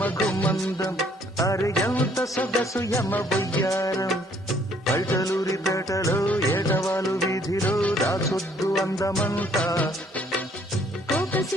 ఘుమందం అరే ఎంత సొగసు యమ బొయ్యారం పల్టలూరి పేటలో ఏటవాలు వీధిలో దాచొద్దు అందమంతా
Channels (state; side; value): normal; both; correlation 0.64